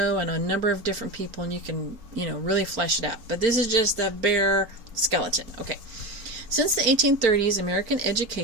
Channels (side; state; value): left; late; 4.4 ms